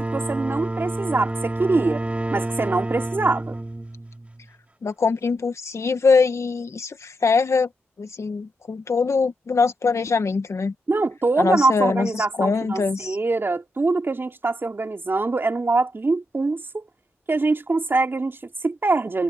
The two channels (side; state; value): both; normal; correlation 0.83